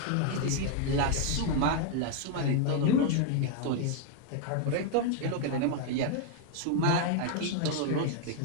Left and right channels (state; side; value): different; both; correlation 0.00